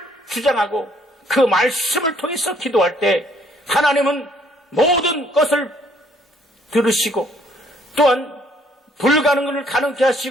주장하고 그 말씀을 통해서 기도할 때 하나님은 모든 것을 들으시고 또한 불가능을 가능케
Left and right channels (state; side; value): normal; both; correlation 0.64